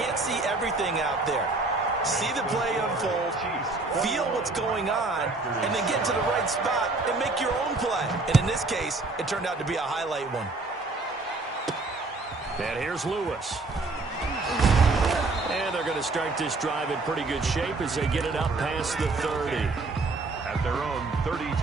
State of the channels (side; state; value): left; quieter; 3.4 dB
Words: see everything out there. See the play unfold, feel what's going on, and then get to the right spot and make your own play. And in this case, it turned out to be a highlight one. And here's Lewis. And they're going to start this drive in pretty good shape as they get it up past the 30. At their own